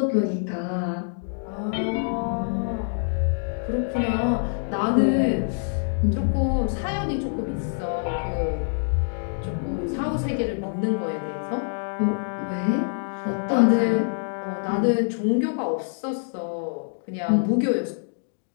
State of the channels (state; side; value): silent; right; digital silence